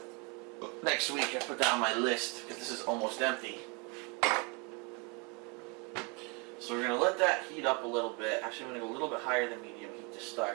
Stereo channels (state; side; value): quieter; left; 31.9 dB